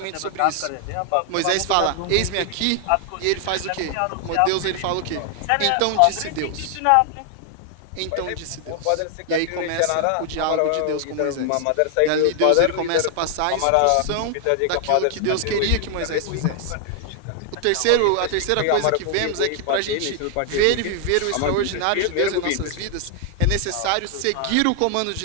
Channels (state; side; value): different; both; correlation 0.00